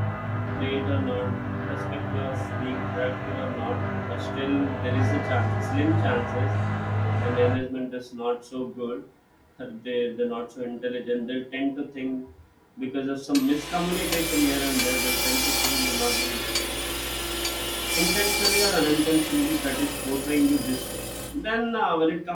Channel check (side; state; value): both; identical; correlation 1.00